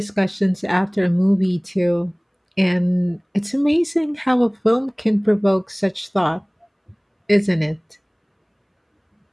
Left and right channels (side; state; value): both; identical; correlation 1.00